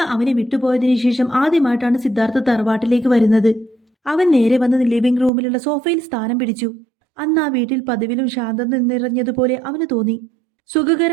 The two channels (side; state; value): left; drops out; at 5.3 s